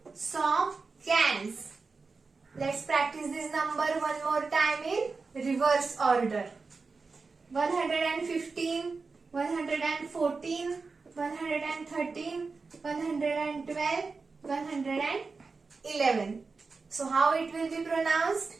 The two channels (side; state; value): left; quieter; 4.4 dB